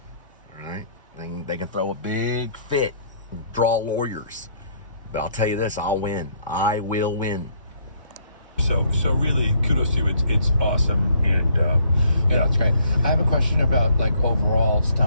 All right? They can throw a big fit, draw lawyers. But I'll tell you this, I'll win. I will win. So really, kudos to you. It's awesome, and yeah, it's great. I have a question about like overall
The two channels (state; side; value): inverted; both; correlation -0.65